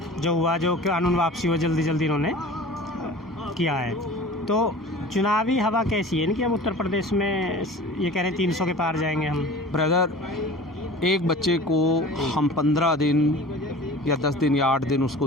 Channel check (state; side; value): normal; both; correlation 0.40